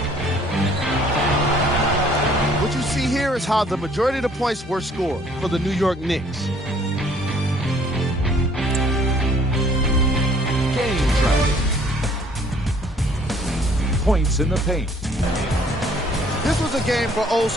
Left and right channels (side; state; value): both; normal; correlation 0.59